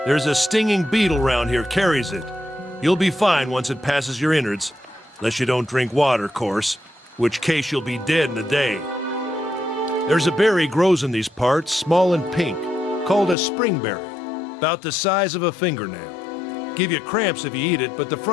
There's a stinging beetle round here, carries it. You'll be fine once it passes your innards. Unless you don't drink water, course. Which case you'll be dead in a day. There's a berry grows in these parts, small and pink, called a springberry. About the size of a fingernail. Give you cramps if you eat it, but the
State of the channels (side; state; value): right; drops out; at 13.4 s